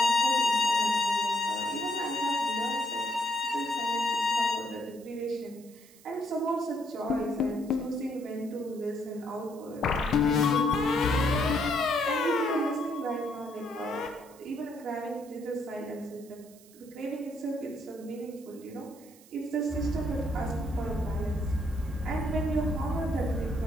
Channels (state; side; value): noise; right; hiss, 24 dB below the sound